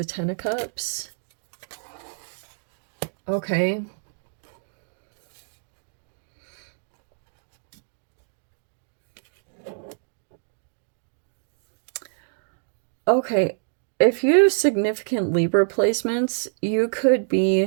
Ten of Cups. Okay. Okay. If you have significant Libra placements, you could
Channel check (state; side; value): silent; left; digital silence